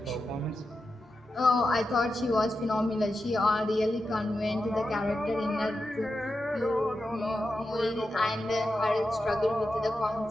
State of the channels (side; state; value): both; normal; correlation 0.89